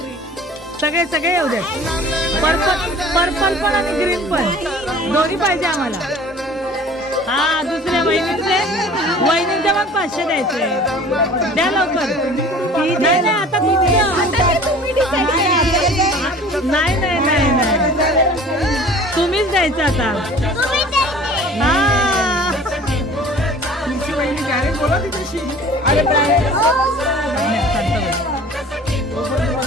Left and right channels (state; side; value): normal; both; correlation 0.46